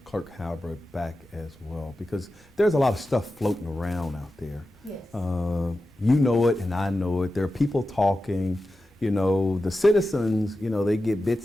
Clerk Halbert back as well, because there's a lot of stuff floating around out there. Yes. You know it and I know it. There are people talking. You know, the citizens, you know, they get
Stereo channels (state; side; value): normal; both; correlation 0.92